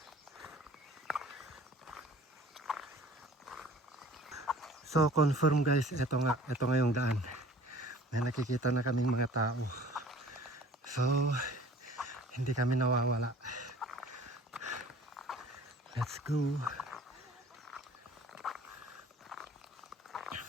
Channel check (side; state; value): both; normal; correlation 0.48